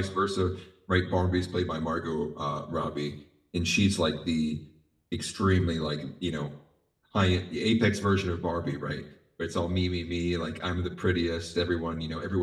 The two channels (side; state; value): both; identical; correlation 1.00